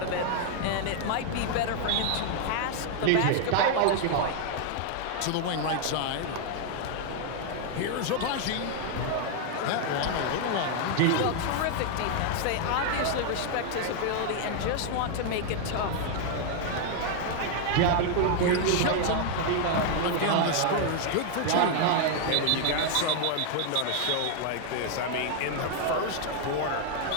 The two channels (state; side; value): different; both; correlation 0.00